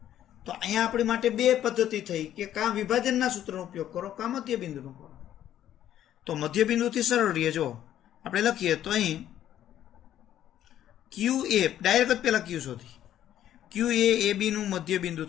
તો અહીંયા આપણી માટે 2 પદ્ધતિ થઈ કે કાં વિભાજનના સૂત્રનો ઉપયોગ કરો કાં મધ્ય બિંદુનો કરો. તો મધ્ય બિંદુથી સરળ રહીએ. જો આપણે લખીએ તો અહીં ક્યુ એ ડાયરેક્ટ જ પહેલા ક્યુ શોધી, ક્યુ એ બીનું મધ્ય બિંદુ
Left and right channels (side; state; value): right; quieter; 11.5 dB